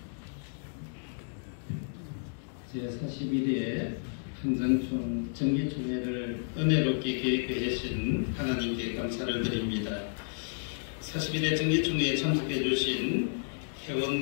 제41회 한장총 정기총회를 은혜롭게 계획해 주신 하나님께 감사를 드립니다. 41회 정기총회에 참석해 주신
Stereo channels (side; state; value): right; silent; digital silence